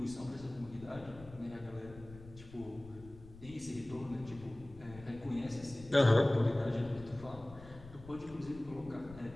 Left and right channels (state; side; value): noise; left; rumble, 17 dB below the sound